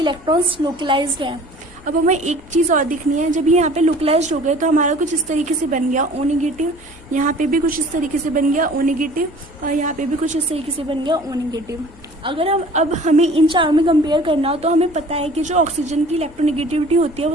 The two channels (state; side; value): noise; left; hum, 24 dB below the sound